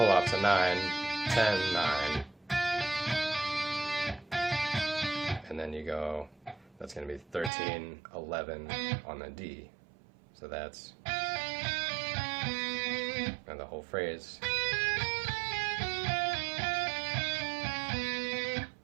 off to 9, 10, 9, and then you go, that's going to be 13, 11 on the D. So that's, and the whole phrase.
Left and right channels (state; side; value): drops out; left; at 7.5 s